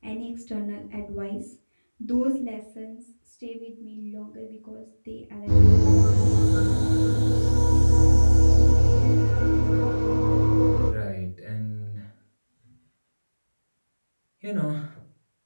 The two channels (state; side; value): inverted; both; correlation -1.00